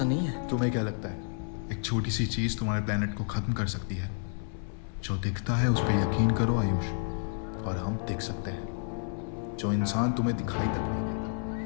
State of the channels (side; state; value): right; silent; 58 dB below the other